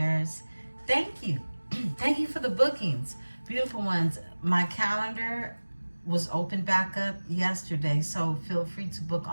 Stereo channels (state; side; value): inverted; both; correlation -1.00